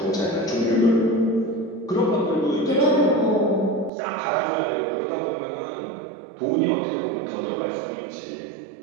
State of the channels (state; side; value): drops out; left; at 3.9 s